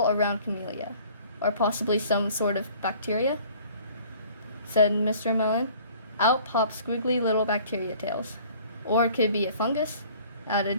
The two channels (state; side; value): inverted; both; correlation -0.52